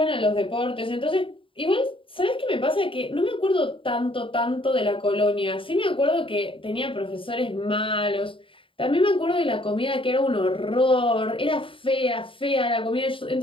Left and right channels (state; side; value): late; right; 0.25 ms